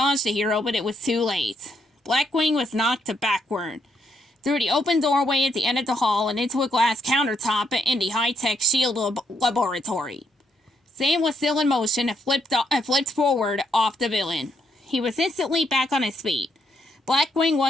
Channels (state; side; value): normal; both; correlation 0.76